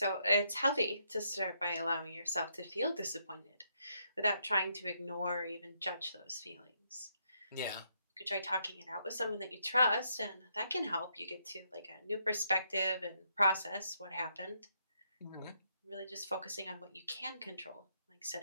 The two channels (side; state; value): both; inverted; correlation -0.76